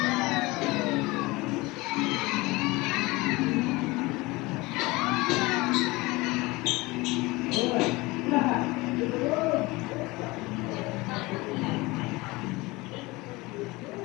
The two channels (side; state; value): right; quieter; 22.4 dB